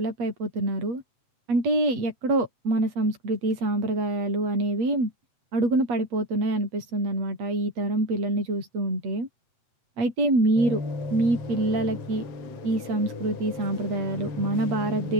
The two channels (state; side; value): late; left; 8.3 ms